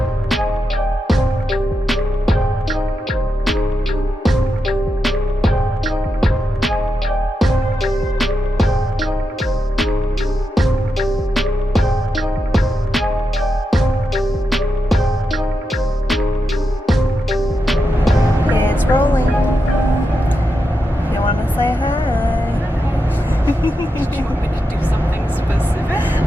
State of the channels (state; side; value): normal; both; correlation 0.87